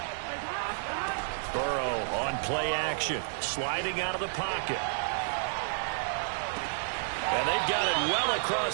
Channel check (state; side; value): silent; left; 57 dB below the other